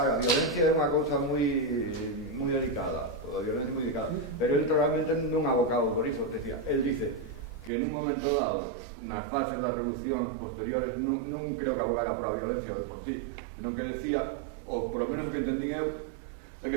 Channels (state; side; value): drops out; left; at 7.7 s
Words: a violencia é unha cousa moi delicada, a violencia é moi delicada, pero él realmente non ha abocado por iso, decía, él dice que nun momento dado, nas fases das revolucións posteriores, non creo que abogara por a violencia de por sí, senón que decía, ou por lo menos o que entendín eu, é